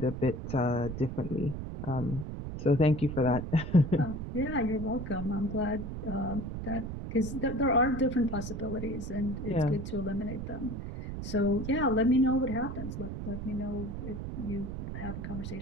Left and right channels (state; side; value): noise; right; rumble, 6 dB below the sound